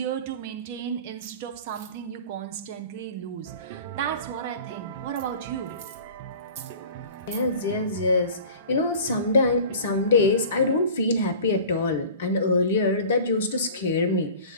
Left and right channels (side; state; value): both; inverted; correlation -0.41